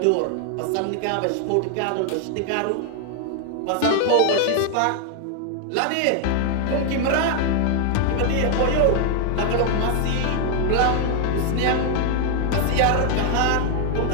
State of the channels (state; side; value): different; both; correlation 0.00